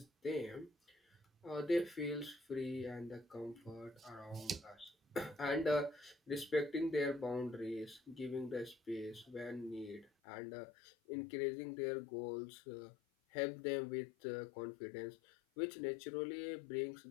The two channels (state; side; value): drops out; right; at 10.1 s